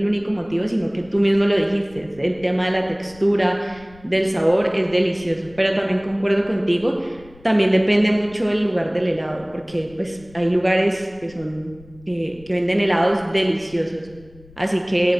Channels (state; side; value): noise; left; rumble, 24 dB below the sound